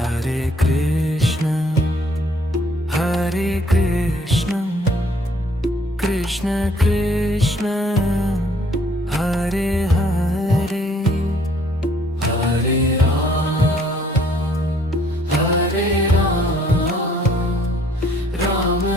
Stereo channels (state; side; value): normal; both; correlation 0.62